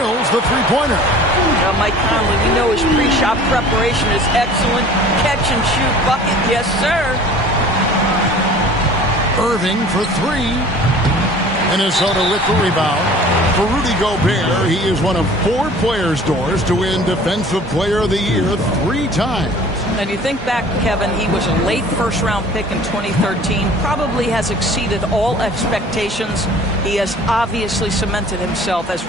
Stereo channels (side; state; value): both; normal; correlation 0.47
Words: the three-pointer. Now, Mike Conley, we know his pre-shot preparation is excellent. Catch and shoot bucket, yes, sir. Irving for 3. Minnesota with the rebound. For Rudy Gobert, he is one of 4 players, Doors, to win Defensive Player of the Year 3 times. And you think back, Kevin, he was a late first-round pick in 2013, probably has exceeded all expectations. He has obviously cemented himself as